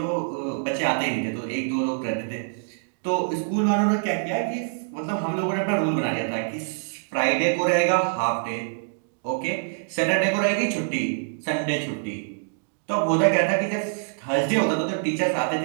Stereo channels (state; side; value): silent; left; digital silence